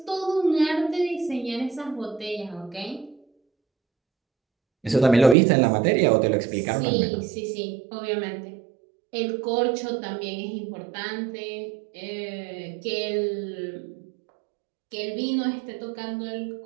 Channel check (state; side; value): drops out; left; at 5.4 s